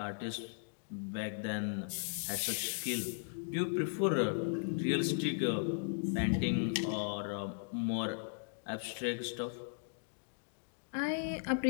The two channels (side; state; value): right; silent; digital silence